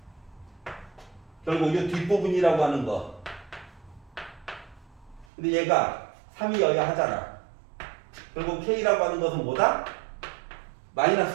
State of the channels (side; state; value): left; drops out; at 5.2 s